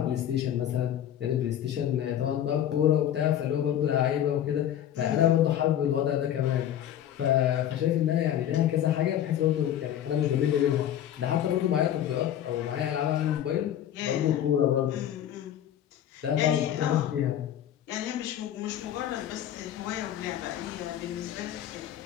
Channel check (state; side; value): quieter; right; 10.8 dB